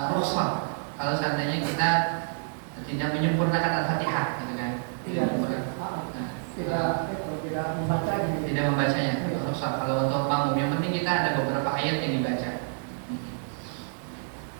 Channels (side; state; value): left; silent; digital silence